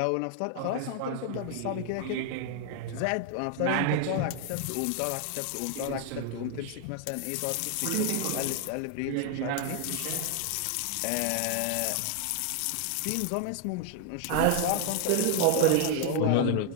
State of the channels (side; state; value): both; different; correlation 0.00